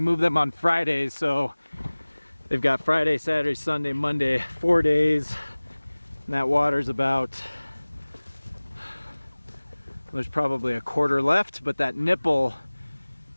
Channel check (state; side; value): inverted; both; correlation -1.00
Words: moved them on Fridays, so they've got Friday, Saturday, Sunday, Monday, 4 days. And that water's about, there's probably a quarter left, but that nipple